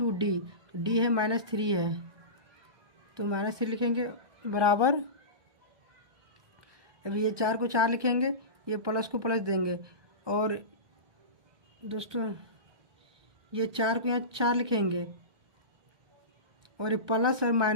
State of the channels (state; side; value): late; left; 1.2 ms